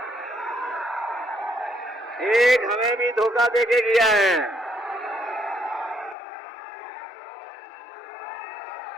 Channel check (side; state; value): right; drops out; at 6.2 s